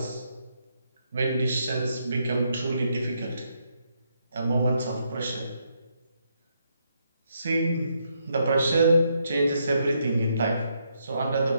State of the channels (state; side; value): inverted; both; correlation -0.77